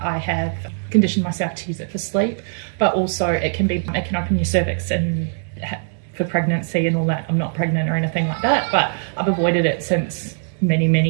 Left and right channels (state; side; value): silent; left; digital silence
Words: I have conditioned myself to use it for sleep, but also it can open your cervix and for pregnancy and all that. I'm not pregnant or anything like that, but I've avoided it since many, many